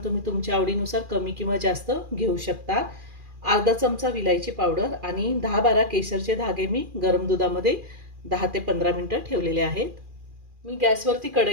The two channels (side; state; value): left; late; 2.4 ms